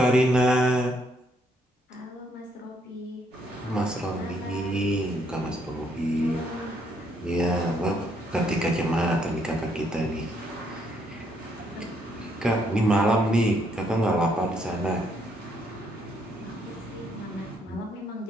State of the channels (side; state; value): both; normal; correlation 0.72